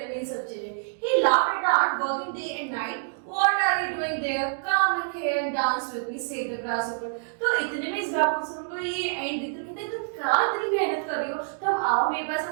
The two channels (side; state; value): left; silent; digital silence